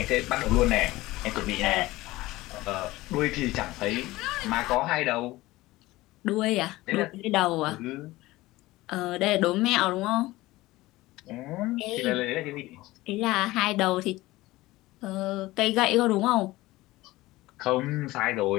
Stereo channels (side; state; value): right; quieter; 18.6 dB